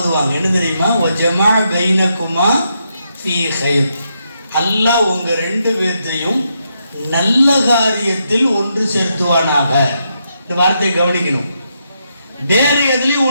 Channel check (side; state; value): both; inverted; correlation -0.81